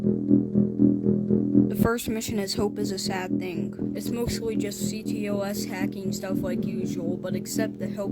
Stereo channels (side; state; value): both; identical; correlation 1.00